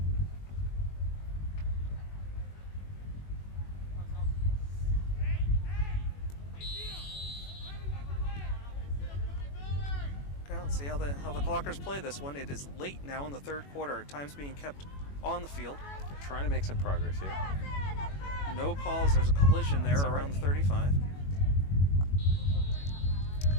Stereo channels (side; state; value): right; late; 21 ms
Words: see how the Clockers play this one. It is late now in the third quarter. Time's being kept on the field. Trying to make some progress here. No calls. There's a collision there around the 35.